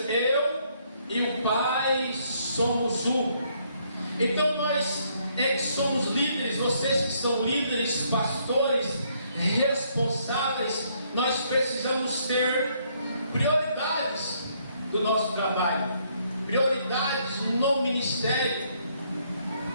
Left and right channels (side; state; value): both; inverted; correlation -0.70